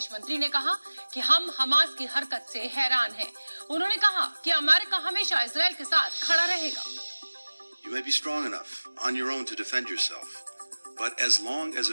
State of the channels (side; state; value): both; inverted; correlation -1.00